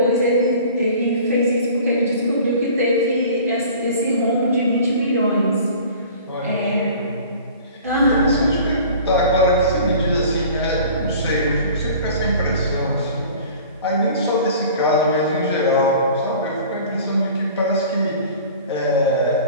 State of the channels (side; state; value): both; inverted; correlation -0.44